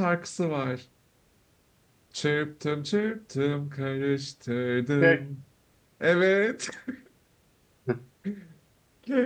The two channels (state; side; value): identical; both; correlation 1.00